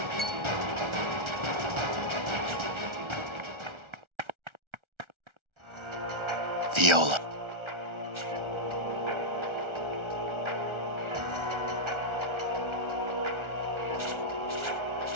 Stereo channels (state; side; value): late; left; 1.4 ms